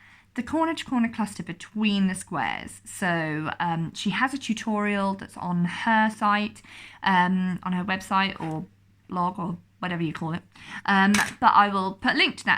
the corner to corner cluster between the squares. So she has a tutorial that's on her site, on her website or blog or whatever you call it. But I will put a link to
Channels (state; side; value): identical; both; correlation 1.00